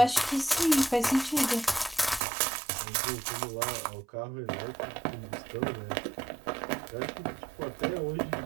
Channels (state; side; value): drops out; left; at 2.2 s